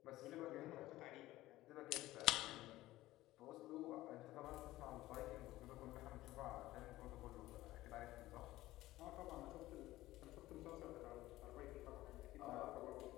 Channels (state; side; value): quieter; right; 16.6 dB